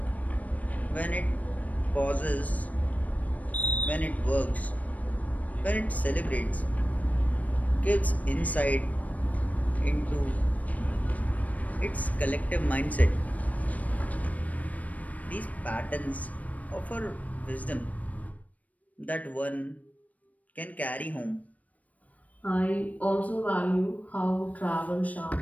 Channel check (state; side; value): late; right; 0.071 ms